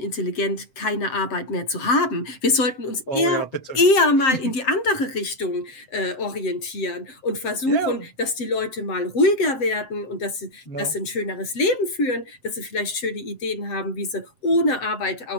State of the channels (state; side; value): late; right; 7.6 ms